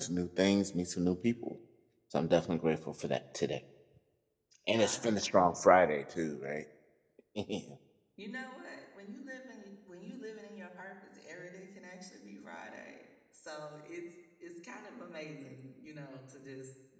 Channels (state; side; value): identical; both; correlation 1.00